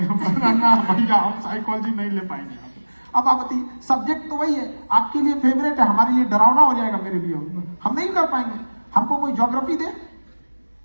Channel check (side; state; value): both; inverted; correlation -1.00